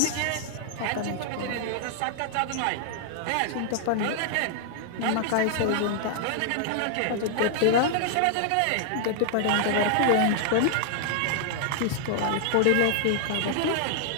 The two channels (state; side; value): different; both; correlation -0.01